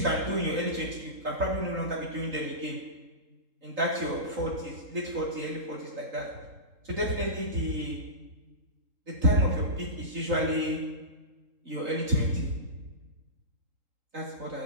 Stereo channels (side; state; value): left; late; 3.8 ms